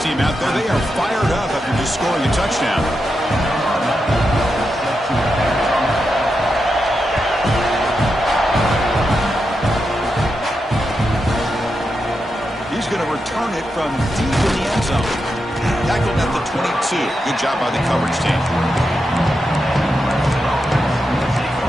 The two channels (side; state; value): both; normal; correlation 0.87